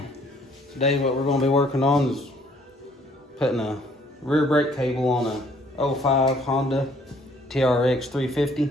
today what we're going to be working on is putting a rear brake cable on a 05 Honda TRX 350.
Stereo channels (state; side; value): normal; both; correlation 0.62